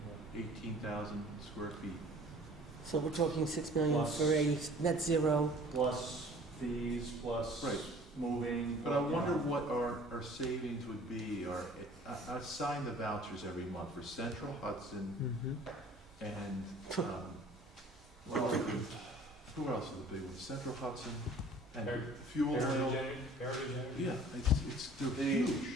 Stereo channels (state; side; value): normal; both; correlation 0.50